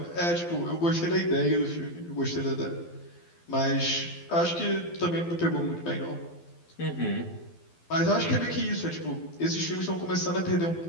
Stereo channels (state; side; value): late; right; 12 ms